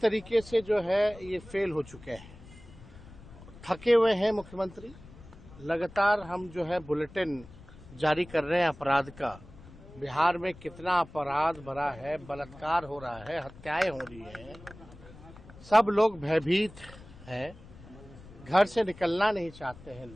से जो है ये फेल हो चुके हैं। थके हुए हैं मुख्यमंत्री। लगातार हम जो है बुलेटिन जारी कर रहे हैं अपराध का। बिहार में कितना अपराध भरा है, बलात्कार हो रहा है, हत्याएं हो रही हैं, सब लोग भयभीत हैं, घर से निकलना नहीं चाहते हैं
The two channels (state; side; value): noise; left; rumble, 19 dB below the sound